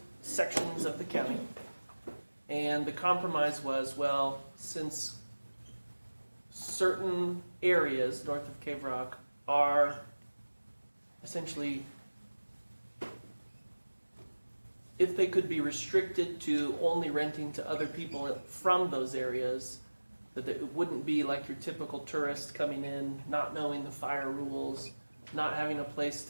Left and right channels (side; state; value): both; inverted; correlation -1.00